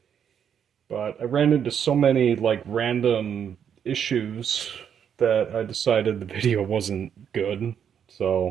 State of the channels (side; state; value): left; quieter; 8.3 dB